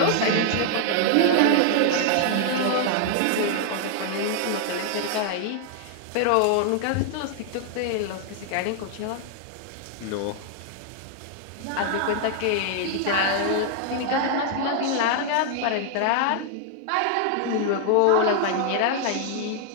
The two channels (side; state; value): both; different; correlation 0.00